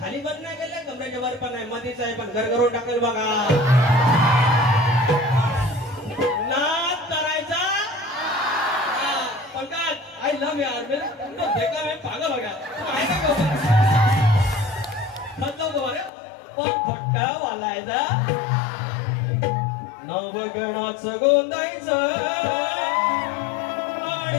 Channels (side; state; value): right; drops out; at 16.1 s